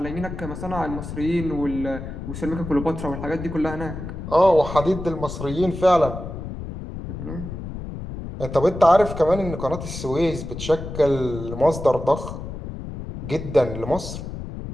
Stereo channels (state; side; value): noise; left; rumble, 8 dB below the sound